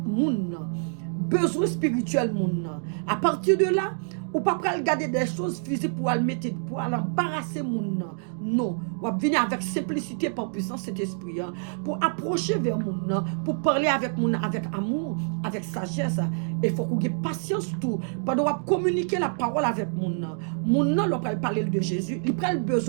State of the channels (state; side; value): silent; left; digital silence